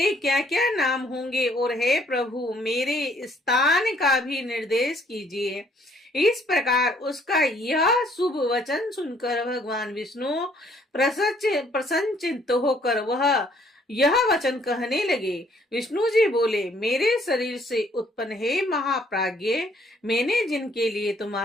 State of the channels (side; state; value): both; normal; correlation 0.64